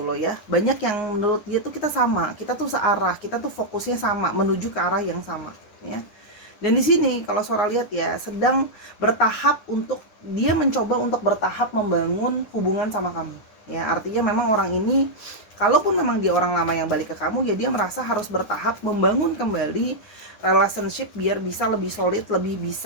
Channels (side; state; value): right; late; 10 ms